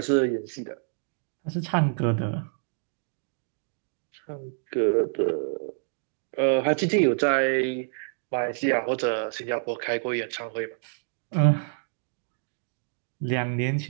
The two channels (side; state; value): left; silent; digital silence